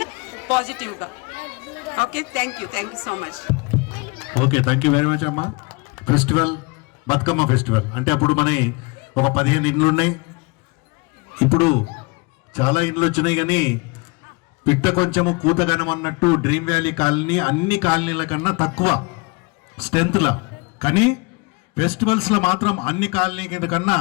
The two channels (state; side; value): quieter; right; 28.1 dB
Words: పాజిటివ్గా. Okay, thank you so much. Okay, thank you very much అమ్మా. ఫెస్టివల్ బతుకమ్మ ఫెస్టివల్ అంటే అప్పుడు మన ఒక 15 ఇండ్లు ఉన్నాయి, ఇప్పుడు చాలా ఇండ్లు వచ్చినాయి. కానీ పిట్ట కొంచెము కూతగనం అన్నట్టు డ్రీమ్ వ్యాలీ కాలనీ అన్ని కాలనీల కన్నా తక్కువ స్ట్రెంత్లా, కానీ ఫెస్టివల్స్లో మాత్రం అన్ని కాలనీ కన్నా